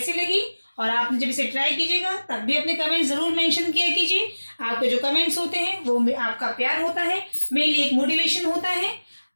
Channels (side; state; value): both; inverted; correlation -1.00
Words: लगी और आपने जब इसे ट्राई कीजिएगा तब भी अपने कमेंट ज़रूर मेंशन किया कीजिए। आपके जो कमेंट्स होते हैं वो आपका प्यार होता है, मेरे लिए एक मोटिवेशन होता है।